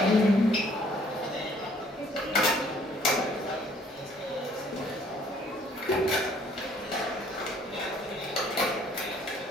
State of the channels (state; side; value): normal; both; correlation 0.60